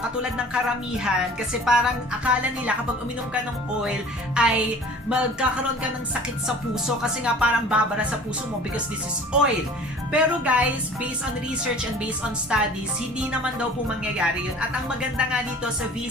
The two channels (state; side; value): normal; both; correlation 0.46